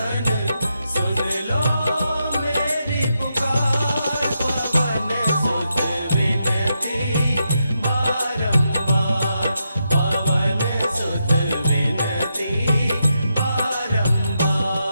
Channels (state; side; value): inverted; both; correlation -0.84